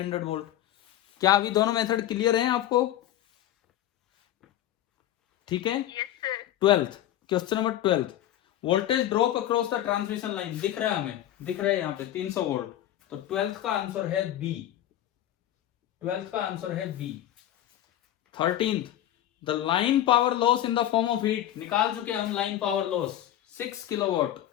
वोल्ट। क्या अभी दोनों मेथड क्लियर हैं आपको? ठीक है। 12th question number 12, voltage drop across the transmission line, दिख रहा है हमें, दिख रहा है यहाँ पे 300 वोल्ट, तो 12th का आंसर है बी। 12th का आंसर है B. 13th, the line power loss in the form of heat, निकाल चुके हम लाइन पावर लॉस 6 किलोवाट,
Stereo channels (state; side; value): quieter; right; 12.5 dB